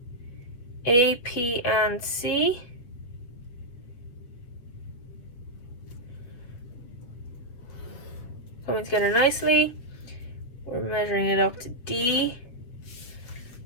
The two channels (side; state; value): right; late; 8.2 ms